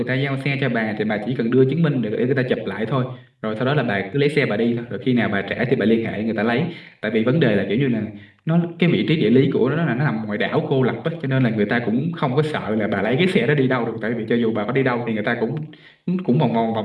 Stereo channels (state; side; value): identical; both; correlation 1.00